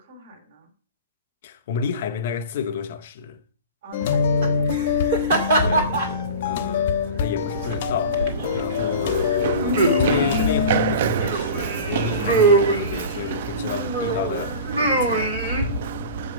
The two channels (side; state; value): both; inverted; correlation -0.35